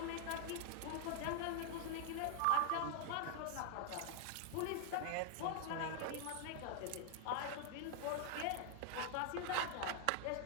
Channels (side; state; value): both; different; correlation 0.00